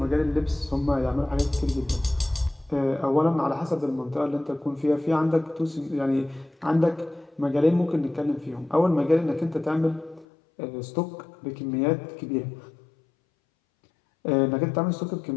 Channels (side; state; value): right; drops out; at 10.2 s